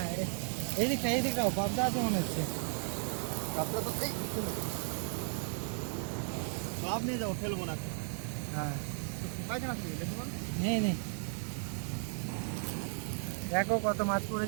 এই দিকটাও পাবদা আছে মনে হচ্ছে। আপনার তো এই সব নিয়ে যাবো, ফেলবো না। হ্যাঁ পায়খানা থেকে দেখুন, নেই দেখো কত মাছ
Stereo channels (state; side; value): silent; left; 54 dB below the other